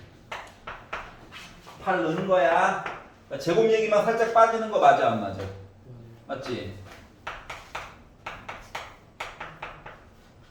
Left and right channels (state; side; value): identical; both; correlation 1.00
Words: 8 넣는 거야. 그러니까 제곱 얘기만 살짝 빠지는 거 맞아, 안 맞아? 맞지?